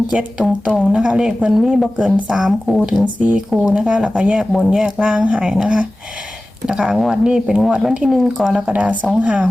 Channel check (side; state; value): both; normal; correlation 0.96